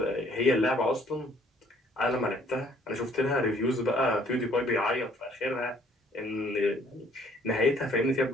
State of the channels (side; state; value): both; normal; correlation 0.61